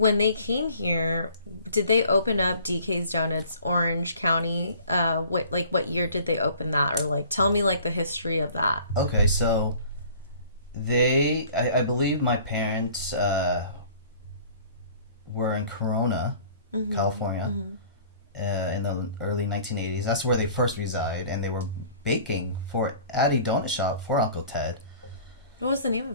they came here, did they open up DK's Donuts, Orange County? What year did they open that? Or like, tell me like the history of that. Okay, so I believe my parents were in Corona, mm-hmm. California, mm-hmm. In the early 1980s. That's where they first reside, and they were baking at a donut shop for Uncle Ted. What was the name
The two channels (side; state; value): both; inverted; correlation -0.50